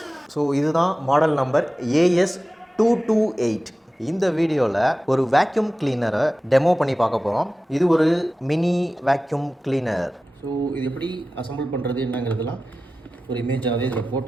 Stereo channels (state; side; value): normal; both; correlation 0.95